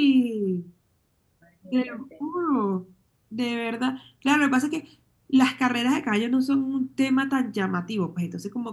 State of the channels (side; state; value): both; identical; correlation 1.00